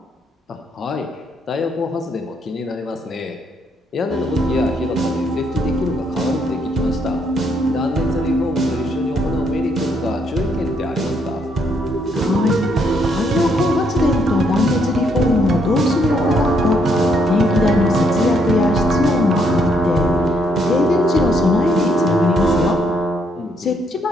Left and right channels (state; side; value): normal; both; correlation 0.72